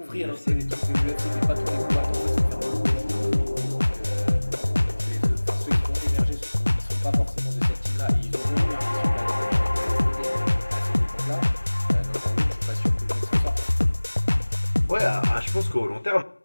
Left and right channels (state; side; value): inverted; both; correlation -1.00